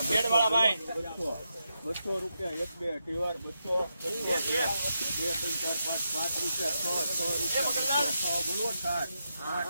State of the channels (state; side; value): inverted; both; correlation -0.85